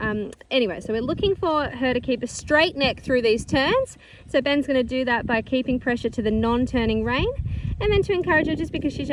Anyway, so we're looking for her to keep a straight neck through these turns. So Ben's going to do that by keeping pressure to the non-turning rein. And then to encourage her, just because she's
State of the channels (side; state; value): both; identical; correlation 1.00